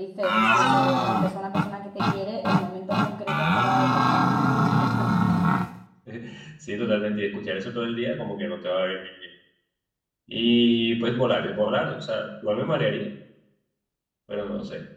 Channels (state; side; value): identical; both; correlation 1.00